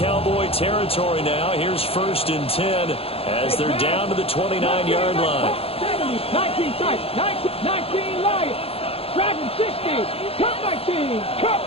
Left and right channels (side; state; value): right; late; 0.28 ms